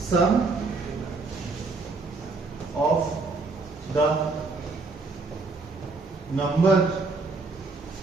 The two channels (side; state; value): left; quieter; 3.8 dB